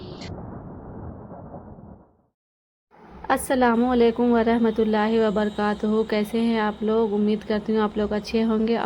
السلام علیکم ورحمۃ اللہ وبرکاتہ۔ کیسے ہیں آپ لوگ؟ امید کرتی ہوں آپ لوگ اچھے ہوں گے،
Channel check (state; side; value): identical; both; correlation 1.00